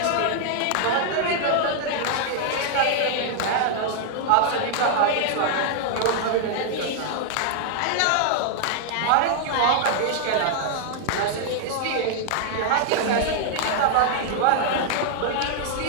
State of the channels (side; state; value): both; different; correlation -0.01